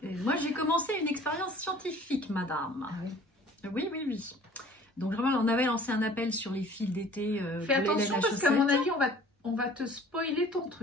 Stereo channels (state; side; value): normal; both; correlation 0.50